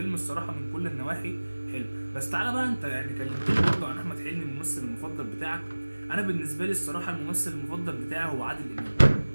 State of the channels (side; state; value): both; inverted; correlation -1.00